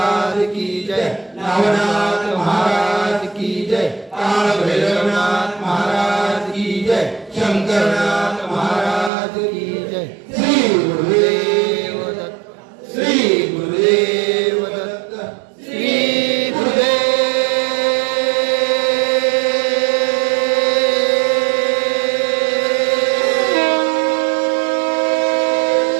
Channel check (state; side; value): drops out; left; at 9.1 s